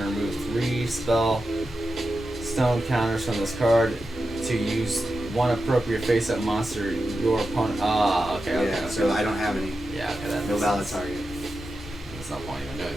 3 spell stone counters from this card to use one appropriate face-up monster your opponent. Okay, Yeah, okay. so I don't have any. Yeah, okay, that No makes valid sense. target. There's no point even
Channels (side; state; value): both; normal; correlation 0.90